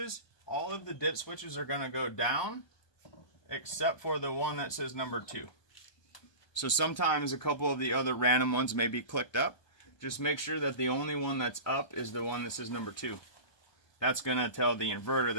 all of the dip switches are going to go down except for the one that says number 2. So sometimes a couple of the other random ones may be clicked up. Just make sure that the only one that's up is the one that says number 2. That's going to tell the inverter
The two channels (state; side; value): late; right; 1.2 ms